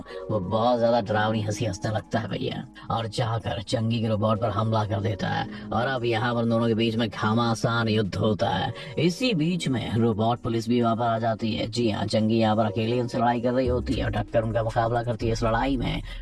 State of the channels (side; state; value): both; identical; correlation 1.00